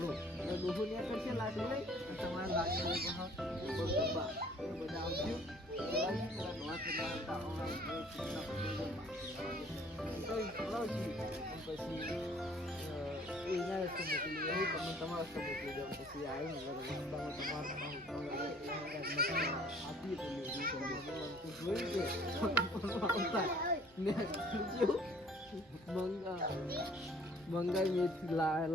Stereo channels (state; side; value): normal; both; correlation 0.56